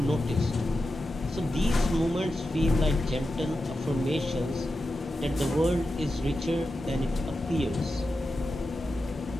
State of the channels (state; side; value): normal; both; correlation 0.90